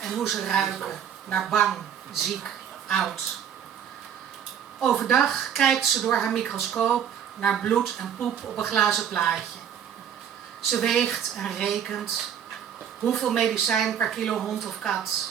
en hoe ze ruiken naar bang, ziek, oud. Overdag kijkt ze door haar microscoop naar bloed en poep op een glazen plaatje. Ze weegt en rekent hoeveel medicijn per kilo hond of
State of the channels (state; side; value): quieter; left; 8.8 dB